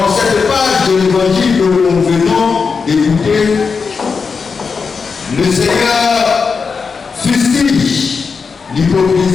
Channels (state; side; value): quieter; right; 5.2 dB